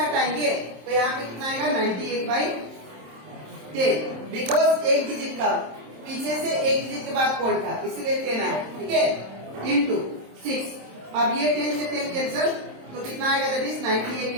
तो यहाँ पे कितना आएगा, 98/10, बिकॉज एक डिजिट का पीछे से एक डिजिट के बाद पॉइंट था, इसीलिए 10 आया। ठीक है, इंटू 6, अब ये 10 से 10 कैंसल, तो कितना आएगा, दैट इज 98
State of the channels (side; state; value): left; late; 27 ms